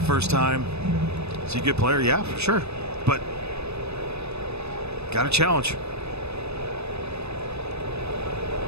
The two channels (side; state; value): left; late; 0.79 ms